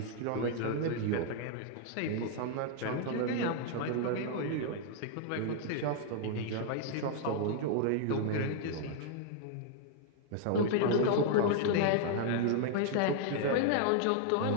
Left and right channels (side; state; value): both; different; correlation 0.00